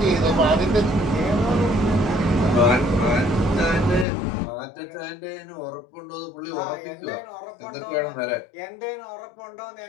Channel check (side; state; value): right; drops out; at 4.0 s